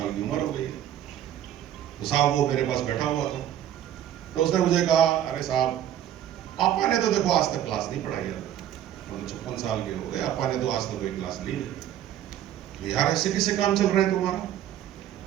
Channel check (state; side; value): quieter; left; 11.2 dB